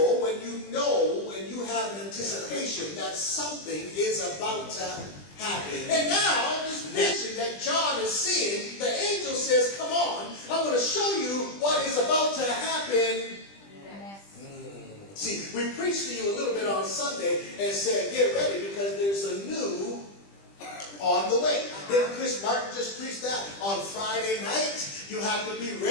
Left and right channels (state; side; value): late; right; 20 ms